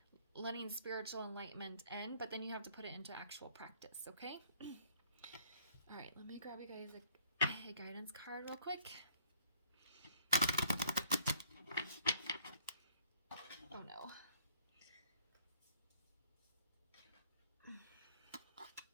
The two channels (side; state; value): both; inverted; correlation -0.60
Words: letting spiritual enlightenment in, but then you have to put it into actual practice, okay? All right, let me grab you guys a guidance card real quick. Oh no.